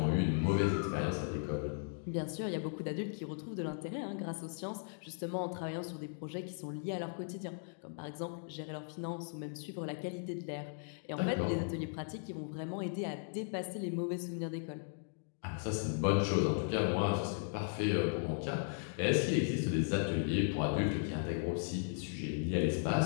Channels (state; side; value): silent; right; digital silence